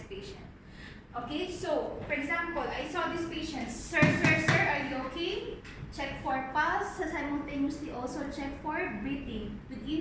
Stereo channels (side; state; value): both; identical; correlation 1.00